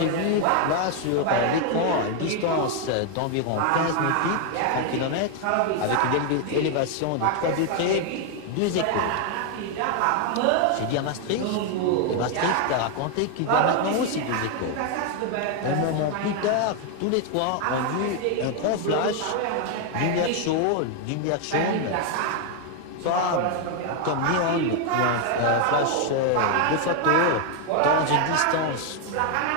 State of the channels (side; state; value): both; different; correlation 0.00